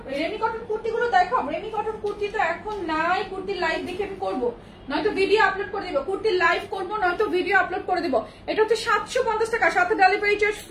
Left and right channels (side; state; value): both; identical; correlation 1.00